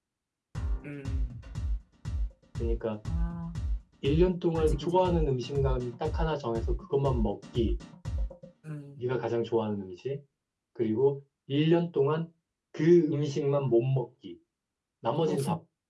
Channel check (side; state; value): both; identical; correlation 1.00